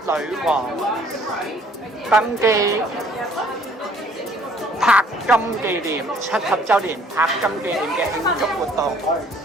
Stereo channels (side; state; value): both; normal; correlation 0.59